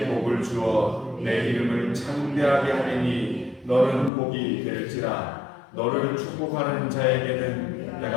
복을 주어 내 이름을 창대하게 하리니 너는 복이 될지라. 너를 축복하는 자에게는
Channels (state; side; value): drops out; right; at 4.1 s